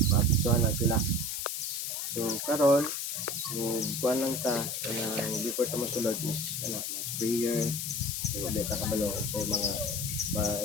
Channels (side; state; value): left; noise; hiss, 3 dB below the sound